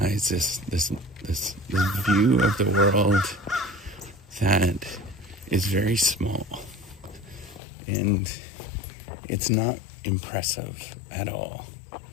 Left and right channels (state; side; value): drops out; right; at 7.6 s